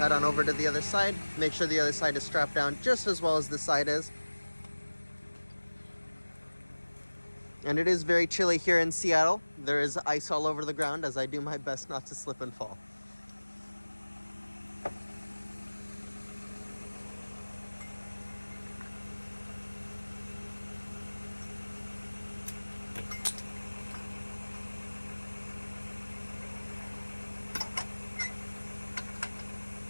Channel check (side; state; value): both; inverted; correlation -1.00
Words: on over to the other side, make sure the other side is strapped down just as well as this side is. And it is very chilly here in Seattle. There is ice all over the ground as I do my best not to slip and fall.